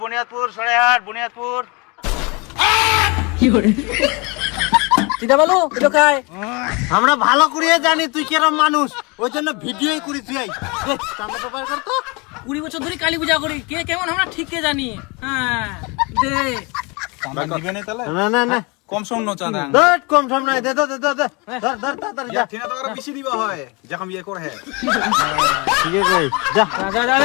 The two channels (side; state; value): right; quieter; 28.2 dB